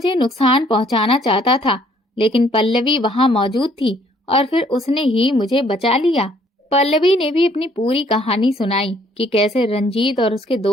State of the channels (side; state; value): both; normal; correlation 0.63